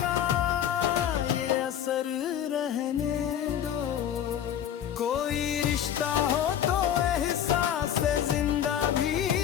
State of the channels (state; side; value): quieter; right; 9.9 dB